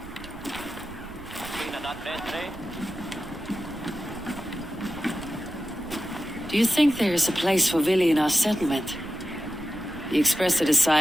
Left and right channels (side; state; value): right; noise; rumble, 16 dB below the sound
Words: Do you think there is a place for Vili in our settlement? He expressed a